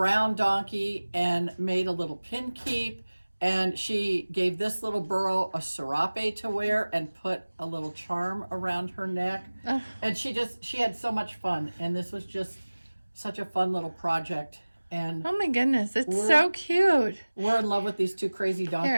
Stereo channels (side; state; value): both; inverted; correlation -1.00